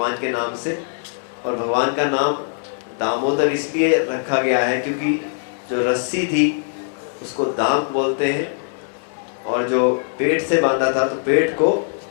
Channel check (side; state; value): right; silent; digital silence